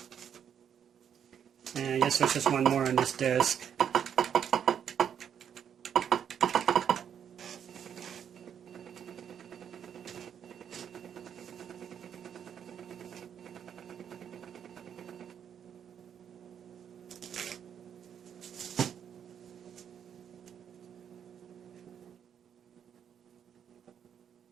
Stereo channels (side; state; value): left; quieter; 8.4 dB